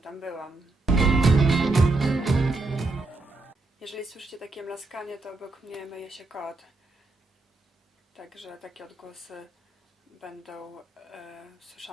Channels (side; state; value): left; quieter; 3.2 dB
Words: byłam. Jeżeli słyszycie takie mlaskanie, to obok mnie myje się kot. Także takie odgłosy będą